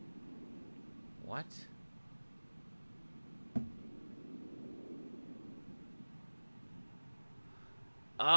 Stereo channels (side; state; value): both; inverted; correlation -1.00